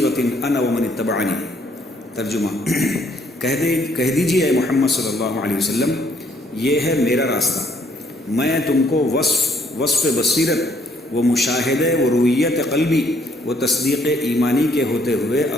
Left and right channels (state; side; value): normal; both; correlation 0.67